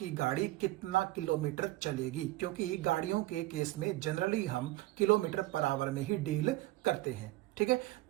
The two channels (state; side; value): quieter; left; 17.8 dB